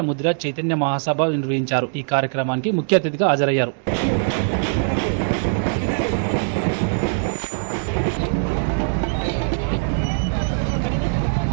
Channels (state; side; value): silent; left; digital silence